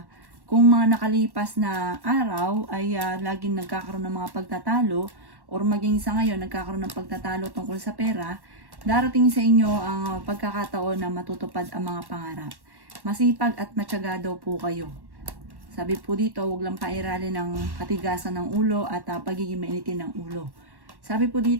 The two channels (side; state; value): left; late; 1.1 ms